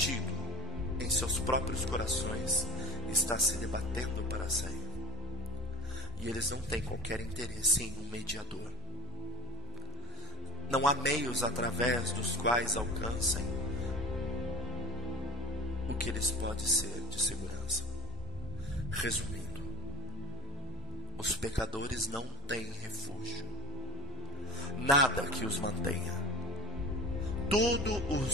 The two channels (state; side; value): normal; both; correlation 0.32